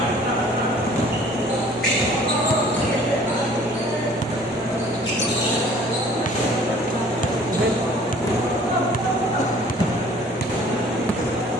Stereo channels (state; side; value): normal; both; correlation 0.53